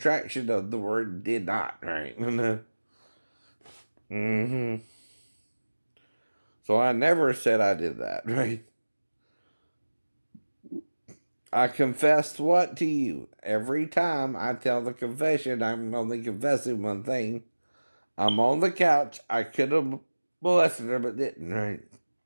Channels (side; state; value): both; inverted; correlation -1.00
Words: of the word did not, right? Mm-hmm. So I never said I did that, right? I confessed what to you? Every time I tell the confession, I'm only confessing one thing. I'm on the couch. I could have molested her, but didn't, right?